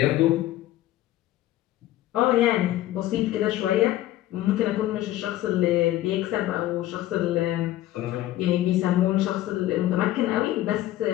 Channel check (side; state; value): right; quieter; 14.6 dB